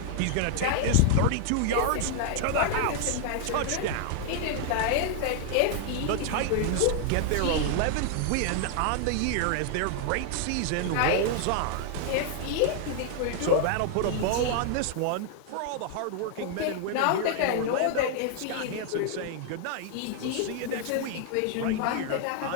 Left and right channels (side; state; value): both; different; correlation 0.00